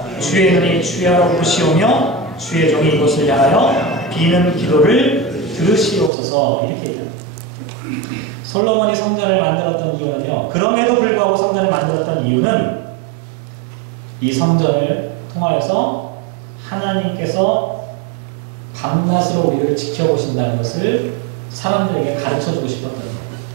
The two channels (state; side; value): drops out; left; at 6.1 s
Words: 주의 눈이 주야로 보시오며 주의 종이 이곳을 향하여 비는 기도를 들으시옵소서 이렇게 얘기합니다. 솔로몬이 성전을 만들었던 이유는요, 그럼에도 불구하고 성전을 만들었던 이유는 이 성전을 통하여서 하나님께서 밤낮으로 우리를 지켜보신다는 것을 사람들에게 가르쳐주고 싶었던 거예요.